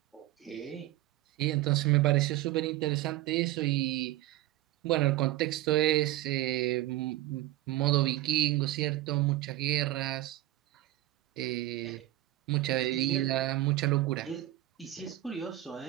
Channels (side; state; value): left; quieter; 15.9 dB